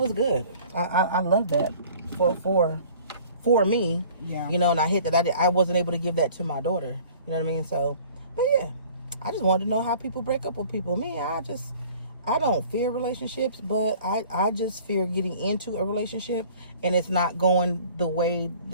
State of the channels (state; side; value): inverted; both; correlation -0.50